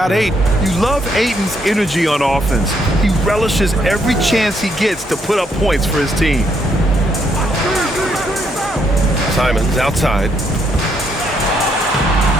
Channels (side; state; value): both; normal; correlation 0.73